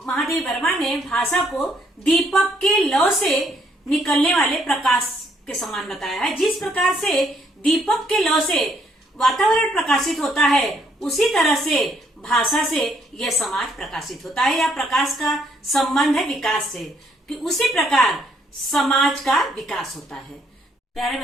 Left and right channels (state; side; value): normal; both; correlation 0.69